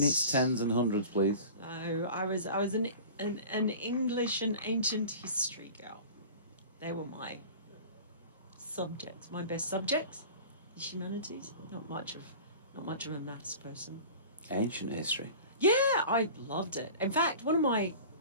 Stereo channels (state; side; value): inverted; both; correlation -0.39